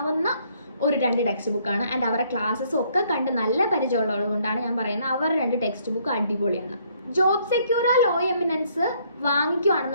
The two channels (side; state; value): both; inverted; correlation -0.66